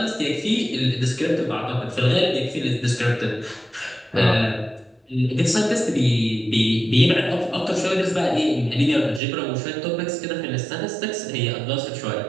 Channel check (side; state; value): left; drops out; at 9.2 s